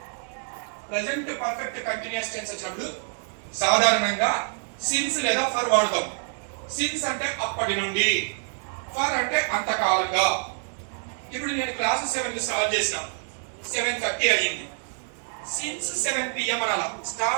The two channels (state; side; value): silent; left; 57 dB below the other